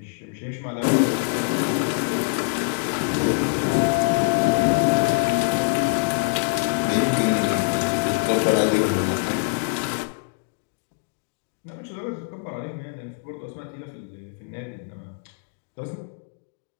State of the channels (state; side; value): silent; right; 58 dB below the other